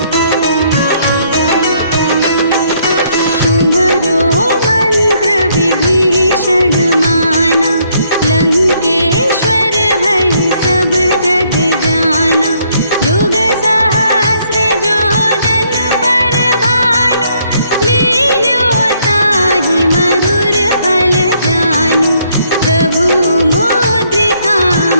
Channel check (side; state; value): both; inverted; correlation -0.69